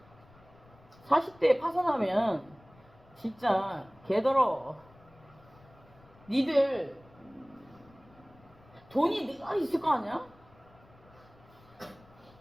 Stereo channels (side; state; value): left; noise; rumble, 26 dB below the sound